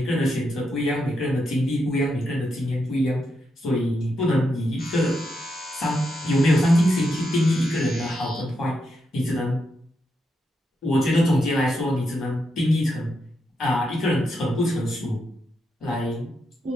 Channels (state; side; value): normal; both; correlation 0.83